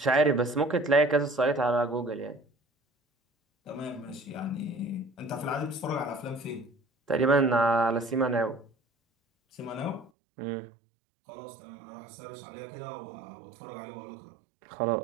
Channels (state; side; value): drops out; left; at 10.1 s